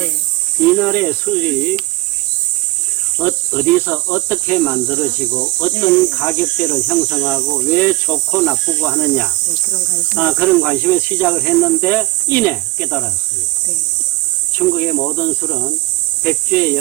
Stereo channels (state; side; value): quieter; left; 19.7 dB